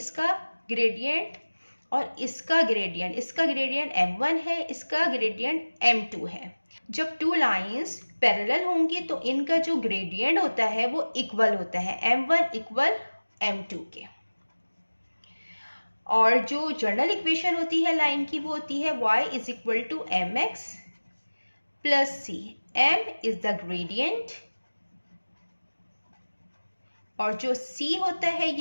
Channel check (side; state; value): both; inverted; correlation -1.00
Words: ग्रेडियंट और इसका ग्रेडियंट m1 है, इसका ग्रेडियंट m2 है। जब टू लाइंस पैरेलल होंगी तो इनका जो ग्रेडियंट होता है वो इक्वल होता है, m1 इक्वल m2 के। और जो जनरल इक्वेशन होती है लाइन की वो होती है y is equal to mx plus c। m is the gradient और जो c होता है